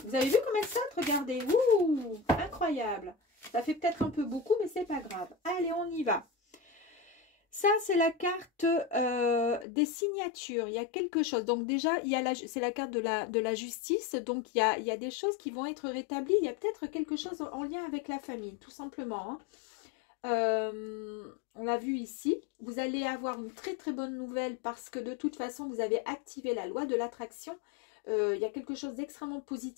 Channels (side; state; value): right; drops out; at 9.7 s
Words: Vous avez vu comme elle saute? Regardez. Ouh, incroyable. Ça fait peut-être un peu beaucoup, mais c'est pas grave. Allez, on y va. Ça, c'est la carte des signatures. Il y a quelque chose. Donc déjà, c'est la carte de la justice. Donc, il y a des choses qui vont être rétablies. Il y a peut-être quelque chose en lien avec la famille, tout simplement. Hein. On l'a vu ici, vous allez avoir une très très bonne nouvelle parce que de toute façon vous avez activé la loi de l'attraction. Il y a quelque chose d'extrêmement